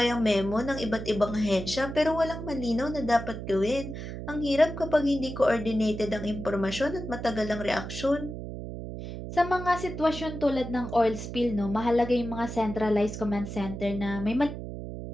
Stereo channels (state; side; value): noise; right; hum, 8 dB below the sound